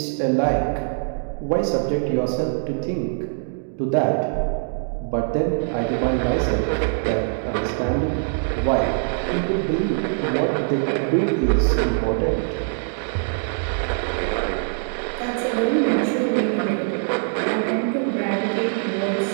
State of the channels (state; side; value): silent; left; digital silence